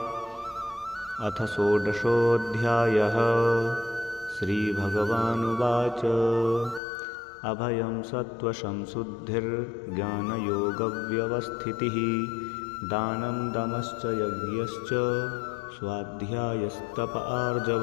अथ षोडशोऽध्यायः। श्रीभगवानुवाच अभयं सत्त्वसंशुद्धिर्ज्ञानयोगव्यवस्थितिः दानं दमश्च यज्ञश्च स्वाध्यायस्तप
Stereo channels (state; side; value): drops out; right; at 6.8 s